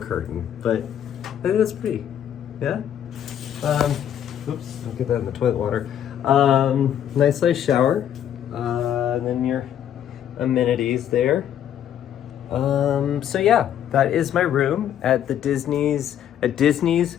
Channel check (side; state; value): right; quieter; 10.1 dB